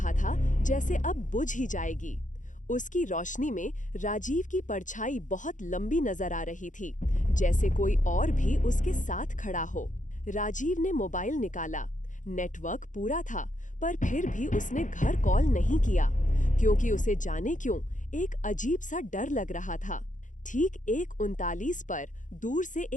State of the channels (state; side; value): late; right; 0.37 ms